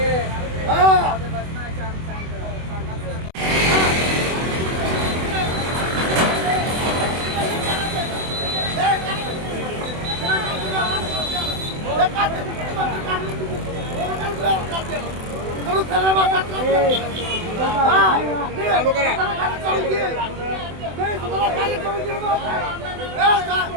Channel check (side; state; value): left; late; 24 ms